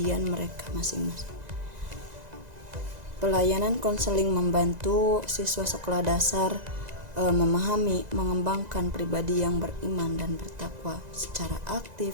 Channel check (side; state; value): left; late; 2.0 ms